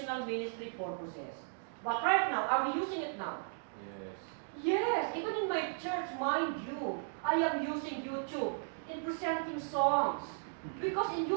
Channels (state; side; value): silent; left; digital silence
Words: ministry purposes. But right now, are we using it now? Yes. Yes, even in my church, mind you, I am using YouTube in presenting songs. Because in